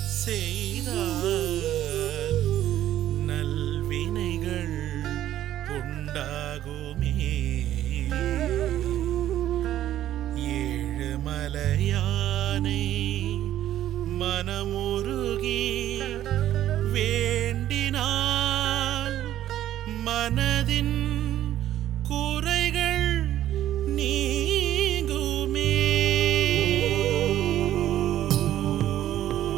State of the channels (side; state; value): left; quieter; 12.5 dB